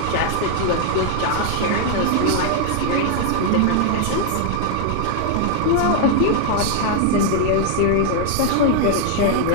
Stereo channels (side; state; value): both; different; correlation 0.00